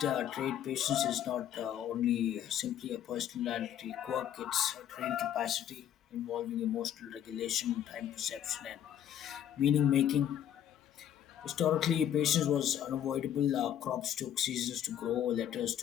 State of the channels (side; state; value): right; quieter; 10.3 dB